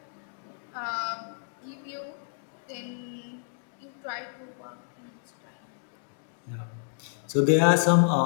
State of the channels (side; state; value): right; silent; digital silence